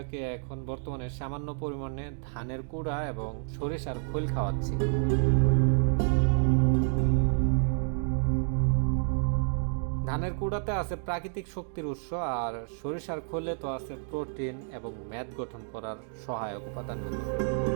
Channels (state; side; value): silent; left; 58 dB below the other